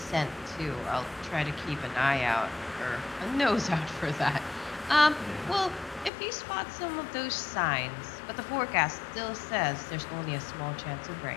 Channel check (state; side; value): drops out; right; at 6.1 s